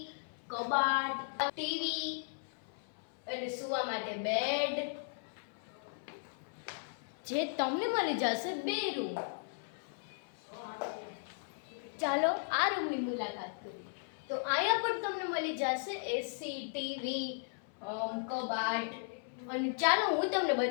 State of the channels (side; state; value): right; silent; 54 dB below the other